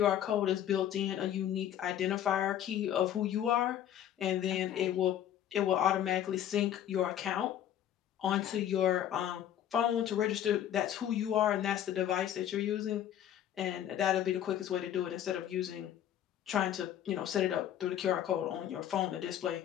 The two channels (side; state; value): right; quieter; 10.8 dB